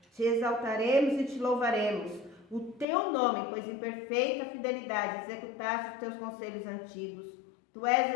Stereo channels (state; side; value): drops out; right; at 2.9 s